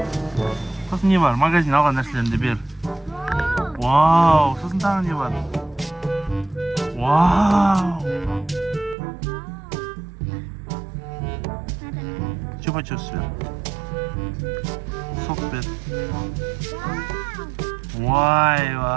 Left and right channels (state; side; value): drops out; left; at 9.0 s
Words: So'sin ne var? Magazin olgan narsalarni ber. Wow, so'sin tag'in ne var? Wow. Chupa-chups ver. Sok ver.